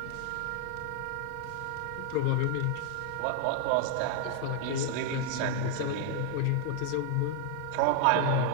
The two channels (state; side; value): different; both; correlation 0.00